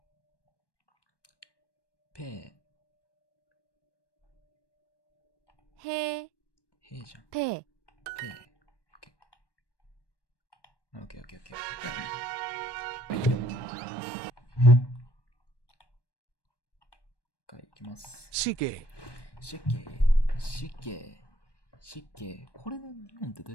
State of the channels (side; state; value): right; late; 1.1 ms